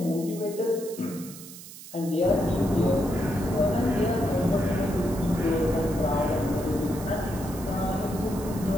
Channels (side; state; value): right; noise; hiss, 15 dB below the sound